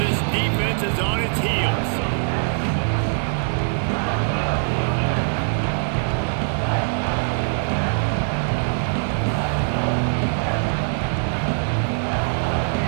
defense is on its heels.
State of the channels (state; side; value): silent; left; digital silence